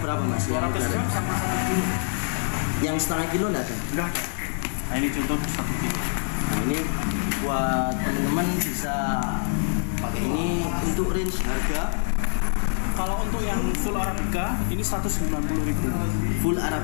mas? Yang 200 udah gram ready? sama 1 kilo. Yang setengah kilo enggak ada? Enggak ada. Nah ini contoh 1 kilo. Nah, ini buat teman-teman bisa pakai ini. Untuk range harga Kalau untuk yang full Arabica ini 190.000. full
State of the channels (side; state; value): right; silent; 62 dB below the other